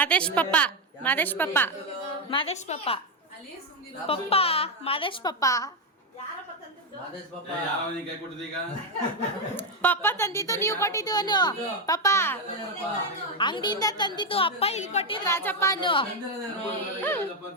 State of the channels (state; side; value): normal; both; correlation 0.05